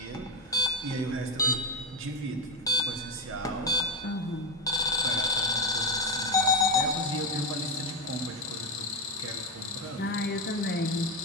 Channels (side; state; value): both; normal; correlation 0.11